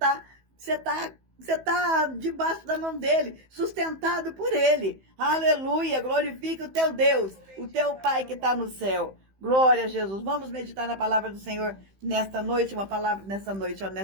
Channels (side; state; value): left; late; 15 ms